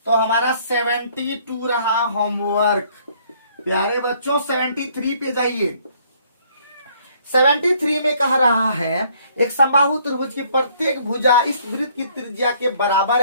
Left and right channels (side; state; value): both; inverted; correlation -0.63